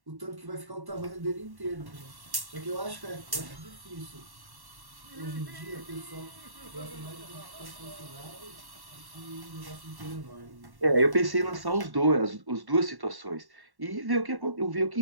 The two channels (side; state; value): left; late; 1.1 ms